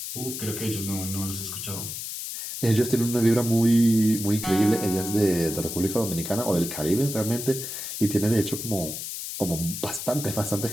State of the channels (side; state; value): left; noise; hiss, 6 dB below the sound